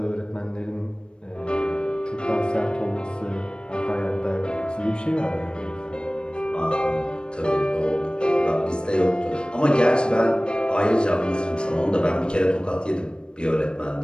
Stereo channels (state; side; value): late; right; 0.053 ms